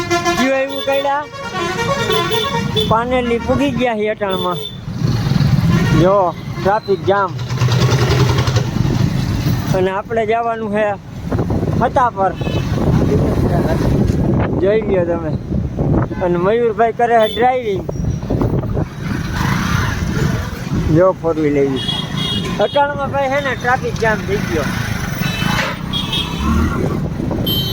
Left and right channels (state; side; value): identical; both; correlation 1.00